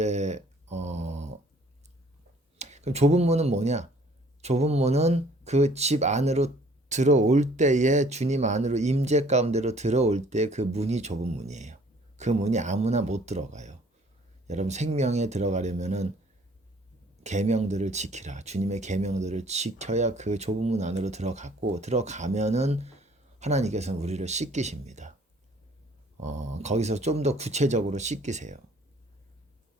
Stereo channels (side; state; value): both; normal; correlation 0.57